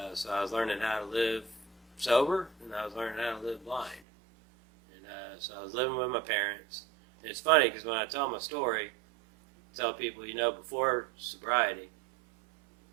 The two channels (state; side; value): drops out; left; at 4.0 s